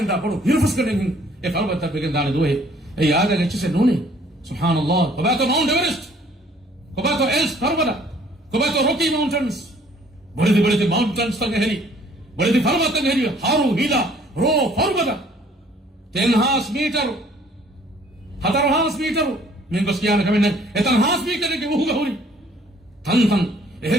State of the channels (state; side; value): normal; both; correlation 0.59